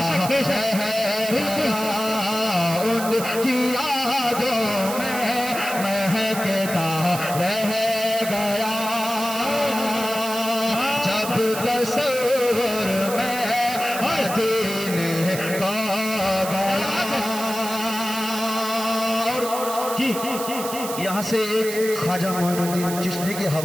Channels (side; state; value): right; noise; hiss, 8 dB below the sound